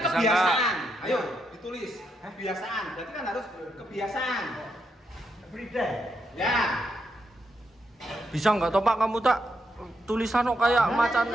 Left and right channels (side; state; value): both; normal; correlation 0.81